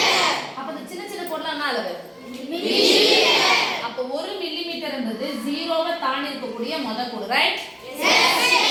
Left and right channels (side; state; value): both; identical; correlation 1.00